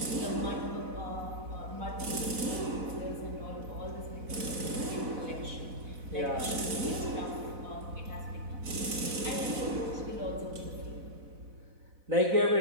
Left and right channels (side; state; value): left; late; 4.0 ms